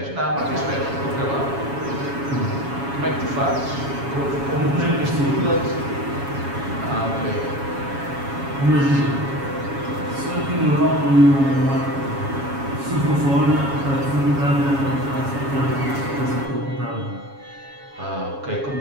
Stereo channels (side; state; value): left; late; 7.2 ms